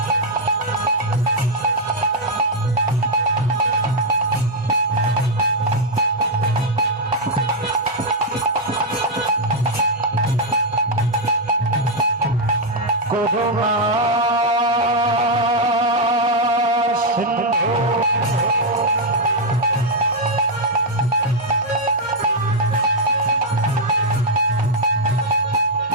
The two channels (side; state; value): both; normal; correlation 0.00